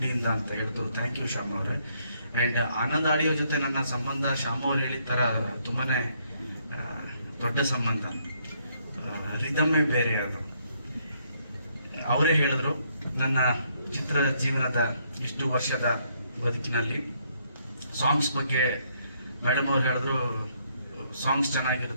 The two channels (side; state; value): both; inverted; correlation -0.71